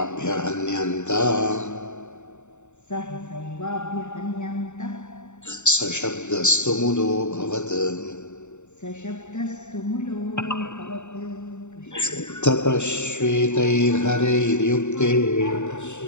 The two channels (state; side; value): late; right; 0.84 ms